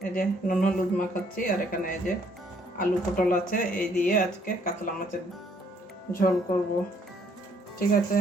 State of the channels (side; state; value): both; normal; correlation 0.66